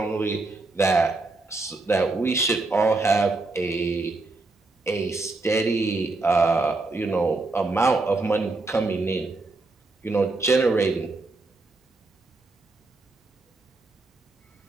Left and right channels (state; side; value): quieter; left; 3.3 dB